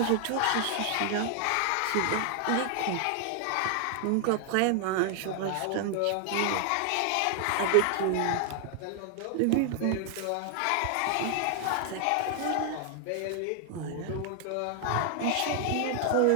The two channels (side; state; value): both; different; correlation 0.00